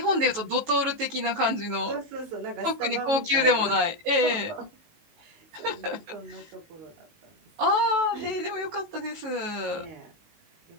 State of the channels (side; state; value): left; late; 18 ms